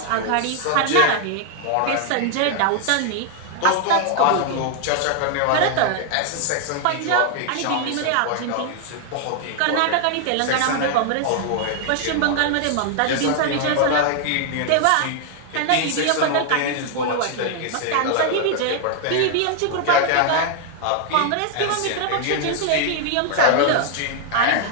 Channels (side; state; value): both; different; correlation 0.00